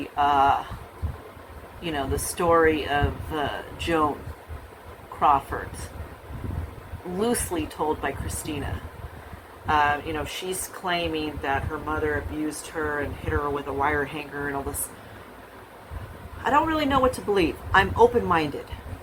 the story of Joan Crawford, loosely told by Christina. She's claiming that her mother abused her and hit her with a wire hanger and all this. I don't really know what to believe. I'm open-minded,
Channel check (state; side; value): identical; both; correlation 1.00